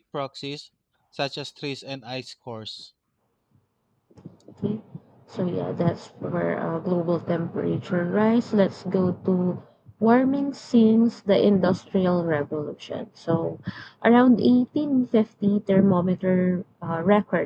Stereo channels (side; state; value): both; identical; correlation 1.00